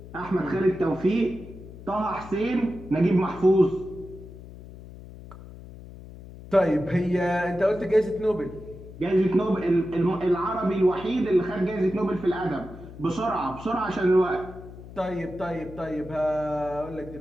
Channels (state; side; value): noise; left; hum, 16 dB below the sound